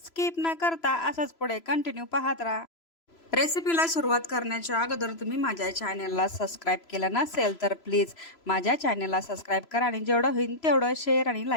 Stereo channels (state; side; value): late; right; 3.0 ms